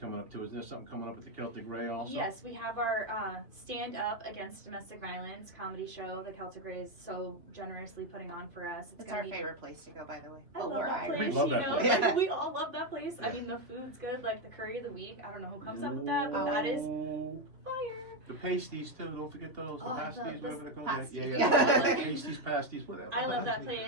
up too. Isn't there something coming up at the Celtic Ray also? Yes, we have our Stand Up Against Domestic Violence comedy show. The Celtic Ray is so generously putting on for us. It's gonna our be favorite place to go, by the way. I love We're that Irish. place. We love that place. Yeah. Like, we all love that place. I Yeah. mean, the food's good. Like the curry of the week. I don't know who comes up with that, but that is fire. The pasties too, don't forget those. The Oh, I love pasties, those whatever they're called. pasties. Yeah. Yeah. Pasties, pasties, whatever. I love that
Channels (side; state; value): left; late; 2.7 ms